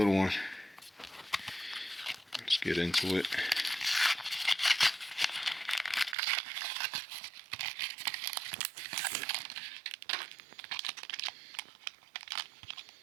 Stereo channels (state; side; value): drops out; left; at 6.2 s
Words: one. Let's get into it.